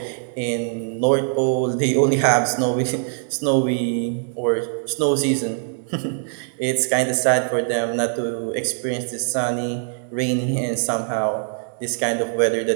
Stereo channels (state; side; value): silent; left; digital silence